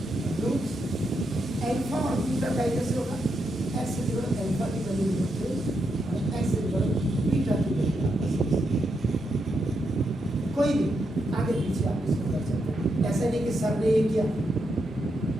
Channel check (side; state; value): both; normal; correlation 0.82